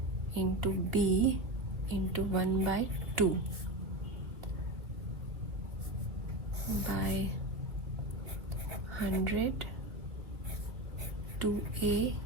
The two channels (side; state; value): left; late; 2.3 ms